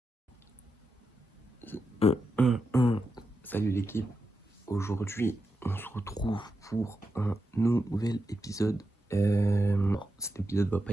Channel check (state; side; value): normal; both; correlation 0.87